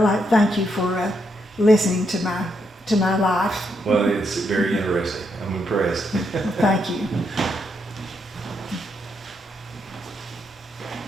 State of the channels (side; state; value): both; normal; correlation 0.79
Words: I thank you for listening to my life. Well, it's very interesting. I'm impressed. Well, thank you.